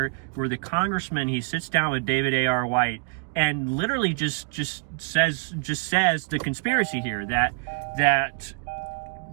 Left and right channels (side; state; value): left; quieter; 38.0 dB